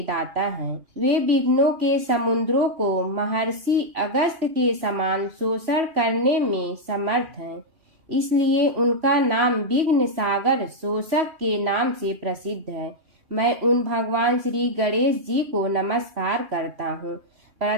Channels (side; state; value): left; late; 3.0 ms